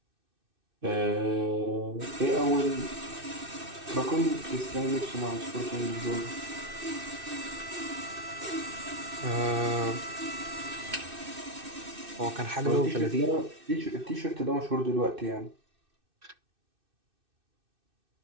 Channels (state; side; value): late; left; 2.6 ms